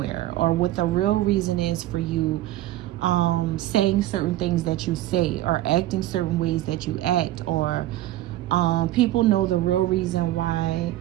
or what the real reason is for you saying certain things that you say, or acting certain ways that you act, or people know the real reason why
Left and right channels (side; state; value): left; quieter; 15.0 dB